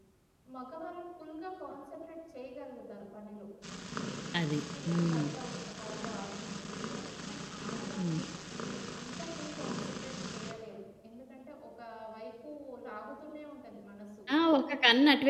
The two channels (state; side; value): identical; both; correlation 1.00